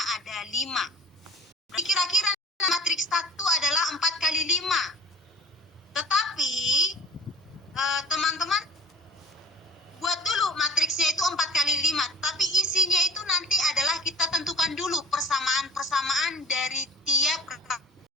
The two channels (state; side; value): normal; both; correlation 0.40